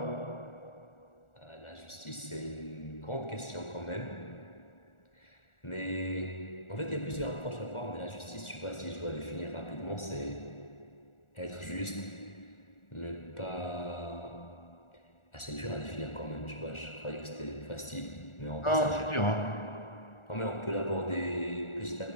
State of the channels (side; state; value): right; late; 1.4 ms